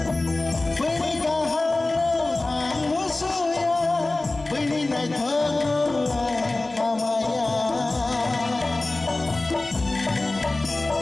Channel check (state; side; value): quieter; right; 3.0 dB